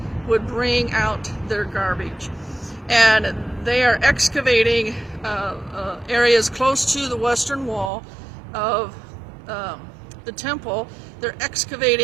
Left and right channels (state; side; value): drops out; left; at 7.9 s